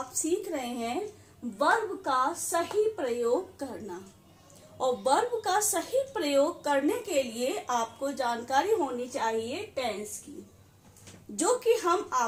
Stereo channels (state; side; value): identical; both; correlation 1.00